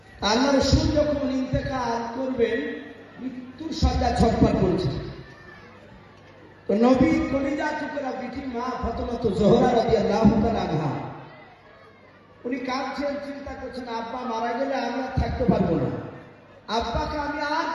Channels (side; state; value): both; identical; correlation 1.00